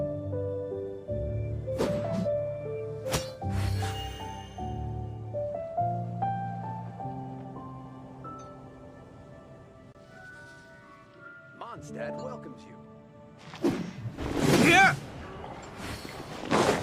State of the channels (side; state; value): both; identical; correlation 1.00